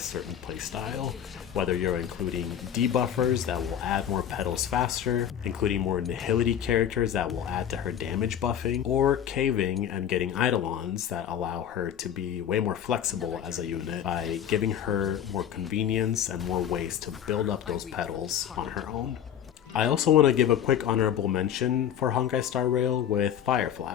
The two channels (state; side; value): quieter; right; 9.6 dB